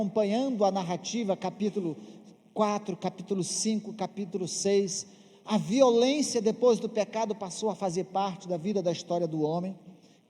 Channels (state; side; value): identical; both; correlation 1.00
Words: a narrativa, capítulo 4, capítulo 5, capítulo 6, a violência depois do pecado passou a fazer parte da vida da história do homem.